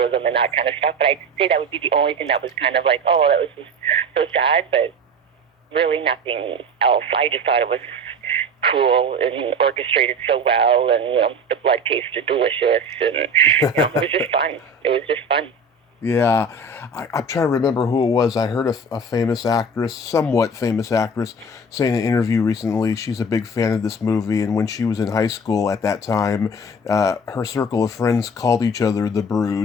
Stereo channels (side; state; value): both; normal; correlation 0.34